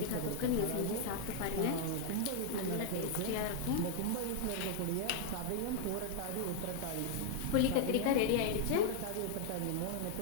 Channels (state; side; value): different; both; correlation 0.00